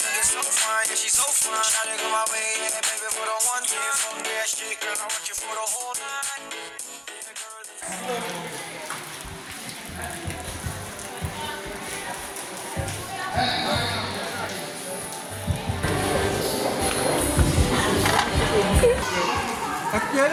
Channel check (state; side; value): identical; both; correlation 1.00